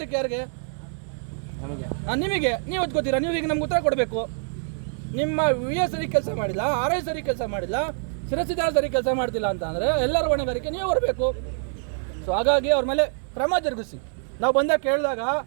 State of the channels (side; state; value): left; silent; 62 dB below the other